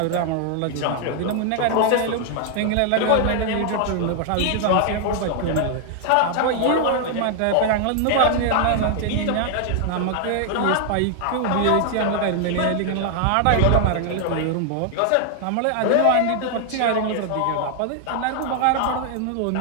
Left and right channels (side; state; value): both; different; correlation 0.00